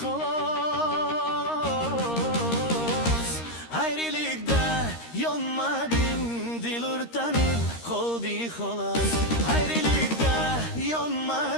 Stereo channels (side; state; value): right; late; 13 ms